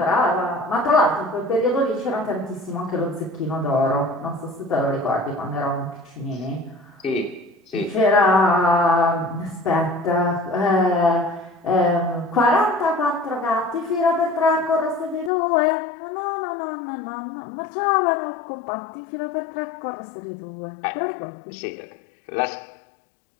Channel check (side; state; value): right; drops out; at 15.3 s